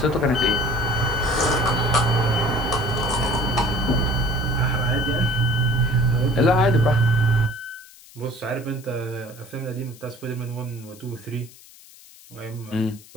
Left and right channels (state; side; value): noise; left; hiss, 22 dB below the sound